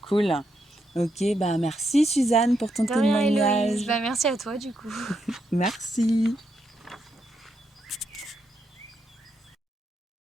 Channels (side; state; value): both; normal; correlation 0.80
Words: Cool. Ok, bah merci Suzanne pour ton De rien Héloïse. témoignage. Bah merci à toi du coup. Merci.